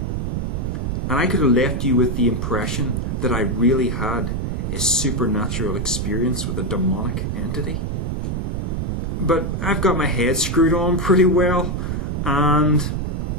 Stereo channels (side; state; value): right; noise; rumble, 1 dB below the sound